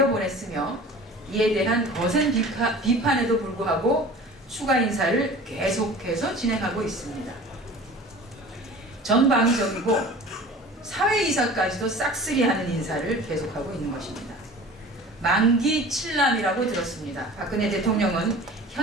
이에 대한 거센 비판에도 불구하고 추가 인사를 계속해서 진행하고 있습니다. 전방위적이고 사회이사까지도 싹쓸이하는 인사를 계속하고 있는 것입니다. 만기 칠남이라고 들었습니다. 박근혜 대통령은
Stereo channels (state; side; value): normal; both; correlation 0.41